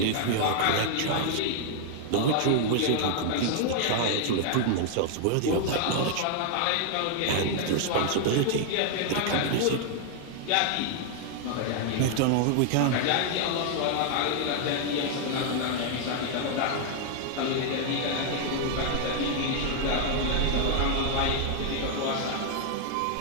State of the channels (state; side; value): different; both; correlation 0.00